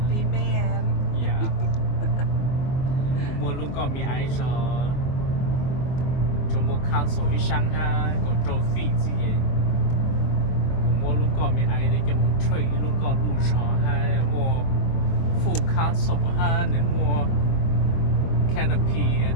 man Yeah. Mua lúc con mi ai rồi. Cho mua cancel đi sang ha, còn trâu phi gì. Mua lúc con mi ai để cho một trade lúc con lưu rõ ha, mua full cancel ha, để mua canopy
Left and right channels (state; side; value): late; right; 24 ms